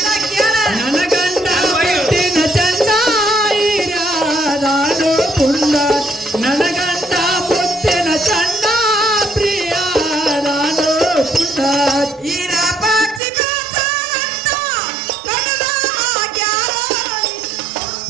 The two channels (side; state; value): left; drops out; at 13.2 s